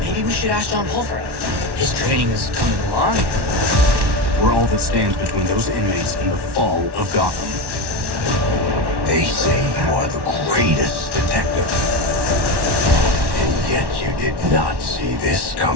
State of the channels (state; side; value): late; left; 1.1 ms